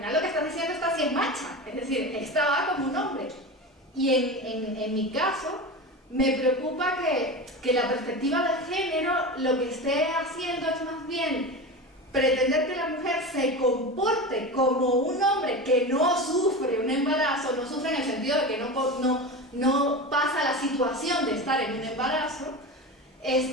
lo que estás diciendo, esta sí es macha, es decir, esta va como un hombre. Y en mi caso, me preocupa que la perspectiva de género lo que esté haciendo es más bien pretender que la mujer se comporte como un hombre que no sufre un embarazo, no sufre en el sentido de que no pasa la situación de estar en un embarazo,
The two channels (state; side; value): normal; both; correlation 0.26